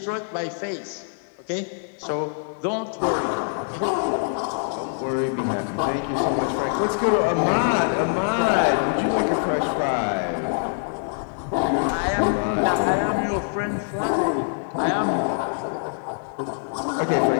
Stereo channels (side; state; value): right; silent; digital silence